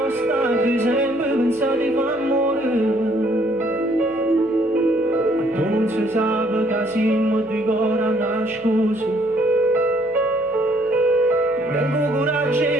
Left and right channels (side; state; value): left; noise; hum, 26 dB below the sound